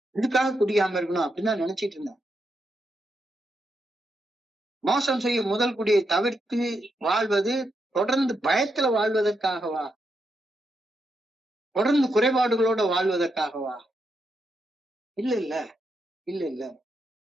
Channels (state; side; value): normal; both; correlation 0.83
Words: இதுக்காக குடிக்காம இருக்கணும் அப்படின்னு தான் நினைச்சிட்டு இருந்தேன். மோசம் செய்யும் முதல் குடியை தவிர்த்து வாழ்வது தொடர்ந்து பயத்துல வாழ்வதற்காகவா? தொடர்ந்து குறைபாடுகளோட வாழ்வதற்காகவா? இல்ல இல்ல இல்ல இல்ல.